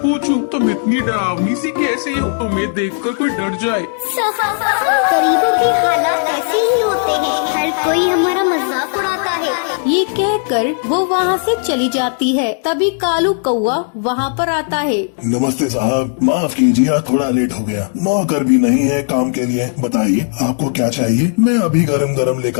पूछूं, तुम इतनी डरावनी सी कैसे हो? तुम्हें देखकर कोई डर जाए। गरीबों के हालात ऐसे ही होते हैं, हर कोई हमारा मजाक उड़ाता है। ये कहकर वो वहाँ से चली जाती है। तभी कालू कौवा वहाँ पर आता है। नमस्ते साहब, माफ कीजिए, थोड़ा लेट हो गया। नौकर भी नहीं है काम के लिए। बताइए आपको क्या चाहिए, मैं अभी गरम गरम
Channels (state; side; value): silent; right; digital silence